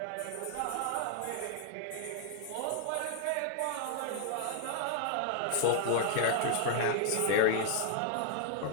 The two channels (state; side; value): different; both; correlation 0.00